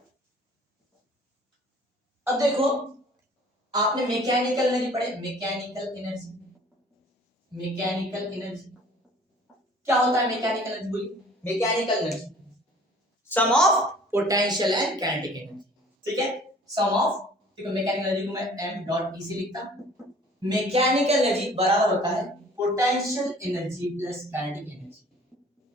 अब देखो आपने मैकेनिकल एनर्जी पढ़े, मैकेनिकल एनर्जी, मैकेनिकल एनर्जी क्या होता है? मैकेनिकल एनर्जी बोलिए, mechanical energy sum of potential and kinetic energy, ठीक है। सम ऑफ, देखो मैकेनिकल एनर्जी को मैं m डॉट e से लिखता हूं। मैकेनिकल एनर्जी बराबर होता है potential energy plus kinetic energy.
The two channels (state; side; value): normal; both; correlation 0.51